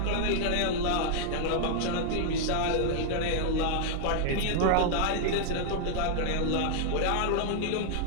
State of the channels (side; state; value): both; different; correlation 0.00